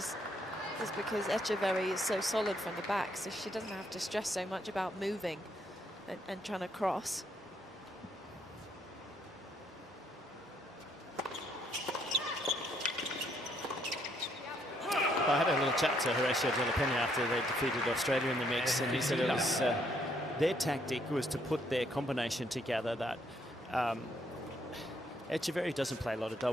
because Etcheverry is so solid from the back, so she doesn't have to stress so much about moving and trying to cross. I had a little chat to Horacio de la Peña after they defeated Australia in the mix, and he said it was their tactic was to put their combination together. That Etcheverry doesn't play a lot of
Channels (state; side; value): normal; both; correlation 0.71